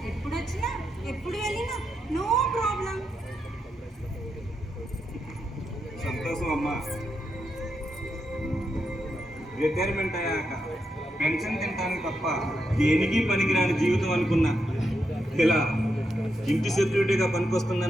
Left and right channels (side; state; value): both; normal; correlation 0.83